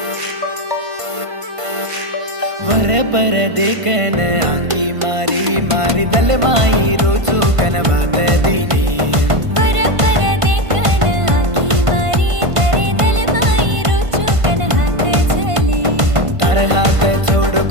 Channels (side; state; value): left; late; 1.5 ms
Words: ವರ ಪರ ದೇಕನ ಆಂಗಿ ಮಾರಿ ಮಾರಿ ದಲೆ ಮಾಯಿ ರೋಚು ಕನವಾತ ದೀನಿ ಪರ ಪರ ದೇಕನ ಆಕಿ ಮಾರಿ ತರೆ ದಲ ಮಾಯಿ ರುಚು ಕನ ಹಾತ ಝಲಿ ತರ ಹಾತ